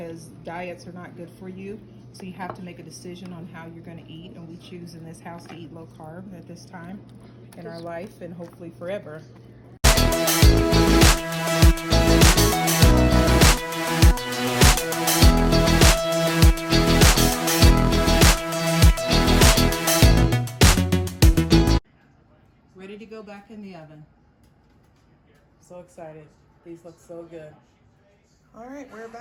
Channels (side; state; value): both; identical; correlation 1.00